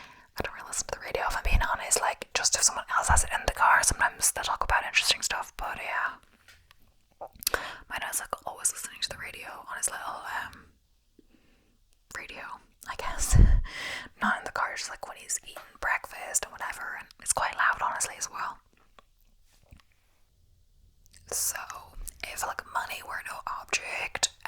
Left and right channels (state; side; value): identical; both; correlation 1.00